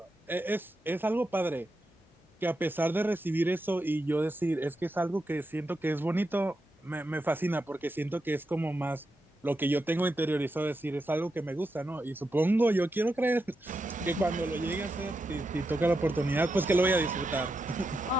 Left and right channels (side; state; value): both; normal; correlation 0.86